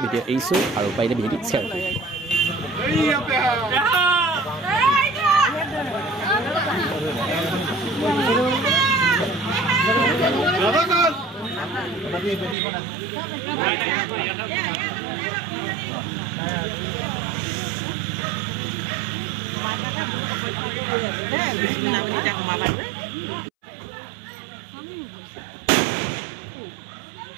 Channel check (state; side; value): drops out; left; at 12.6 s